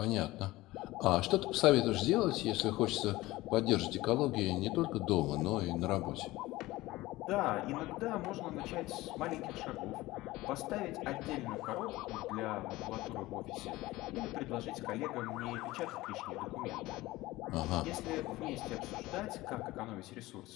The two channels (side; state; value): right; quieter; 18.5 dB